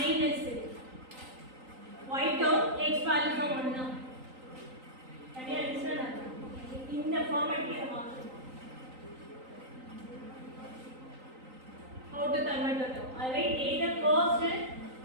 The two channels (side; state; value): left; late; 3.9 ms